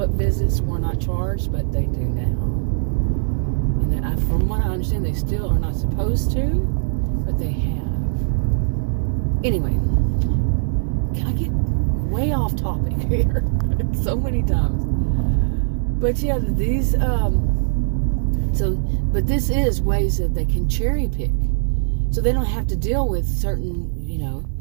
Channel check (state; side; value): silent; left; digital silence